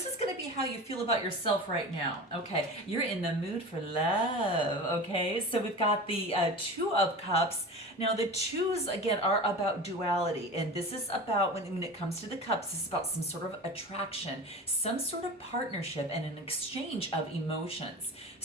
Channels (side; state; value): both; normal; correlation 0.32